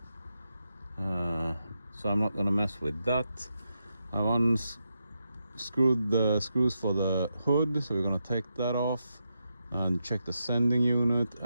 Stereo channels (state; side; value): inverted; both; correlation -0.85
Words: So I'm not gonna mess with that. I unscrewed the screws for the hood, so we're gonna take that off and check the sending unit,